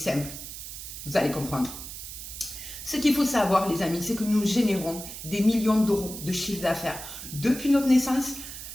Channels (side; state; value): right; noise; hiss, 10 dB below the sound